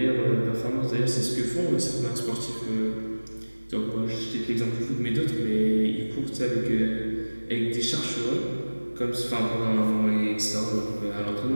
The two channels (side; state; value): both; inverted; correlation -1.00